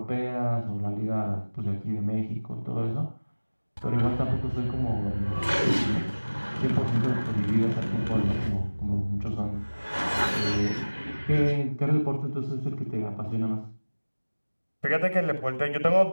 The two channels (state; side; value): inverted; both; correlation -1.00